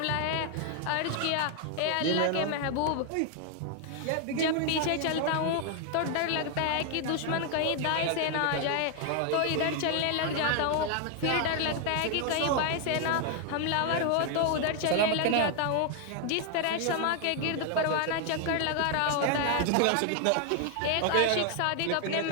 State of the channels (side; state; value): both; different; correlation 0.00